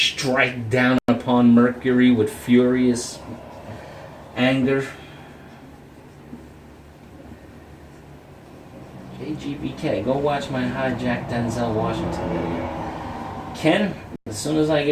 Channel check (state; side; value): identical; both; correlation 1.00